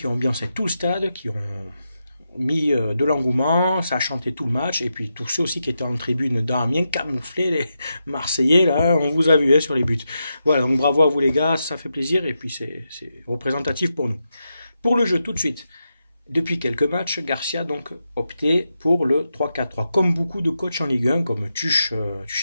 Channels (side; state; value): both; inverted; correlation -0.87